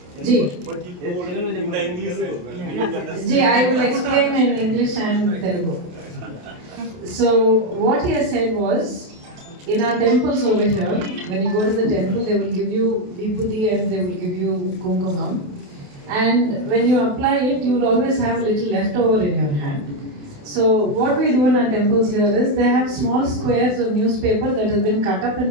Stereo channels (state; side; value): late; left; 28 ms